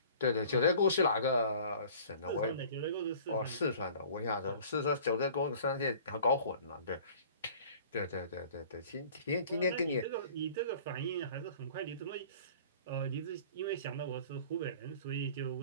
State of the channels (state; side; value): inverted; both; correlation -0.47